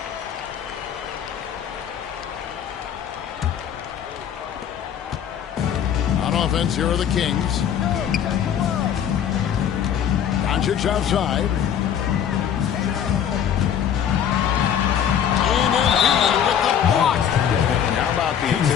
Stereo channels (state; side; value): quieter; right; 9.0 dB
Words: On offense, here are the Kings. Doncic outside. And Embiid with the block. And how about the